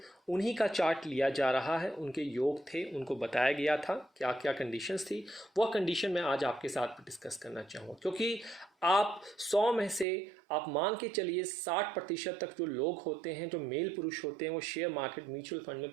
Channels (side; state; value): left; drops out; at 10.1 s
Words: उन्हीं का चार्ट लिया जा रहा है। उनके योग थे, उनको बताया गया था क्या क्या कंडीशंस थी। वह कंडीशन मैं आज आपके साथ डिस्कस करना चाहूँगा, क्योंकि आप 100 में से आप मान के चलिए 60% तक जो लोग होते हैं, जो मेल पुरुष होते हैं, वो शेयर मार्केट म्यूचुअल फंड में